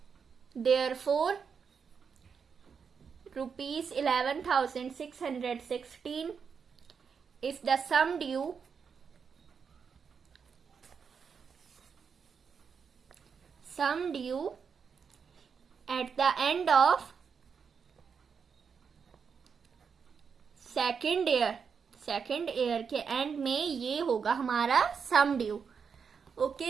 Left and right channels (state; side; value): quieter; left; 6.2 dB